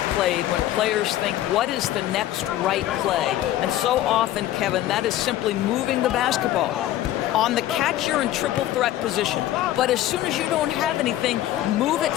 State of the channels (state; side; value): quieter; right; 13.7 dB